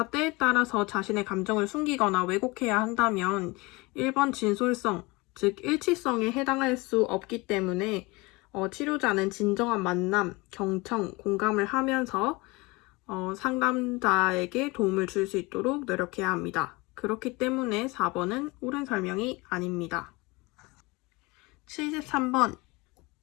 때에 따라서 자신의 감정을 숨기거나 왜곡해야 한다면 1번 진솔성, 즉 일치성에 해당할 수 없기 때문에 치료자는 진정한 만남, 경청, 공감을 하면서 상담자에게 도움을 줄 수 있도록 노력해야 합니다. 그렇기 때문에 4번은 옳은 설명이 아닙니다. 73번,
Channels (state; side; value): quieter; right; 24.3 dB